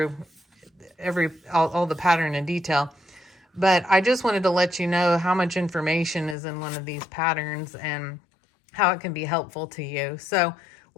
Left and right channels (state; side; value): drops out; right; at 6.4 s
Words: all the pattern in detail, but I just wanted to let you know how much information is in one of these patterns and how it can be helpful to you. So